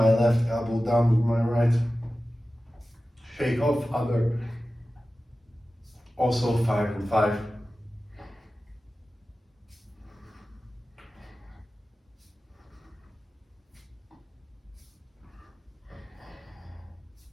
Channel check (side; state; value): both; normal; correlation 0.95